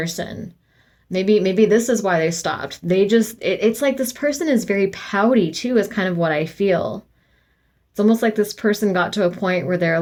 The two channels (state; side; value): identical; both; correlation 1.00